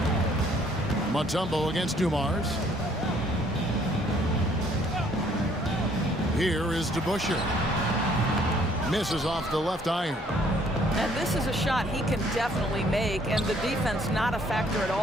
Mutombo against Dumars. Here is DeBusschere. Misses off the left iron. And this is a shot he can definitely make, and the defense not a factor at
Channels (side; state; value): both; normal; correlation 0.63